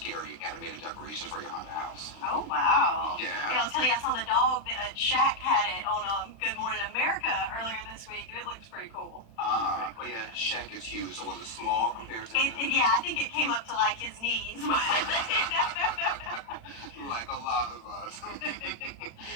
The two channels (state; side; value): late; right; 35 ms